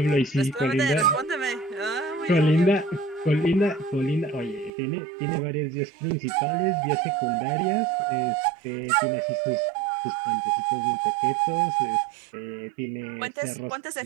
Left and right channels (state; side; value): drops out; left; at 4.7 s